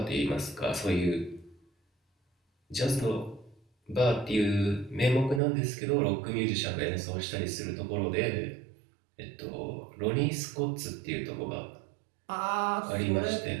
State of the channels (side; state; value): left; drops out; at 5.4 s